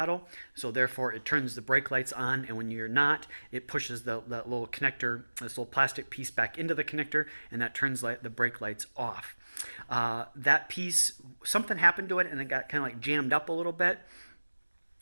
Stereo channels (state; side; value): inverted; both; correlation -1.00